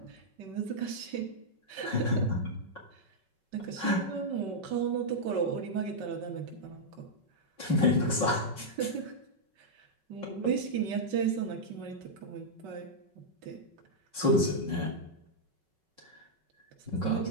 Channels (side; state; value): left; late; 5.3 ms